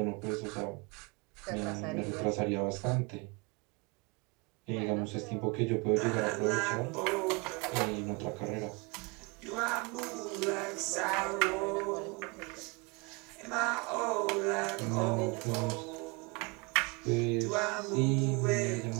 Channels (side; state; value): left; quieter; 29.2 dB